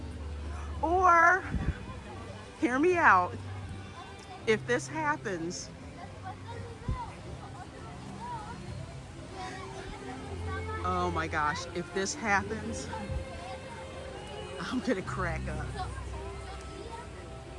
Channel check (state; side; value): identical; both; correlation 1.00